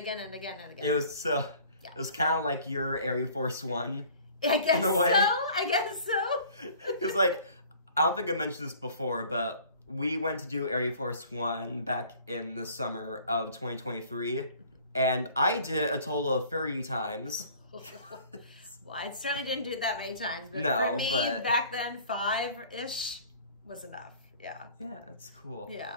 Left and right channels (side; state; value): both; inverted; correlation -0.50